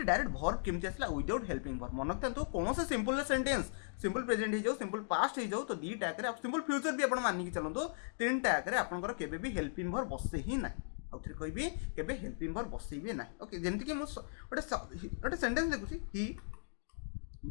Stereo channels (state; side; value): silent; right; digital silence